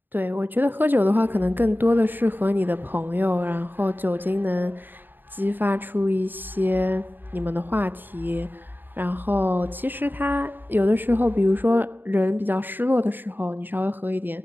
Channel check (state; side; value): late; left; 0.093 ms